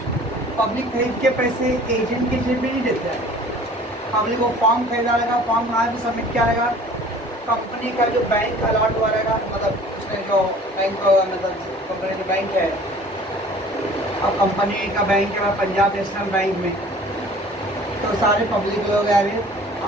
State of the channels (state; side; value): normal; both; correlation 0.48